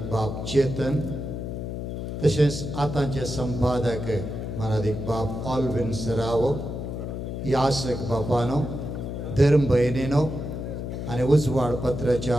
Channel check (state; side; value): noise; left; hum, 5 dB below the sound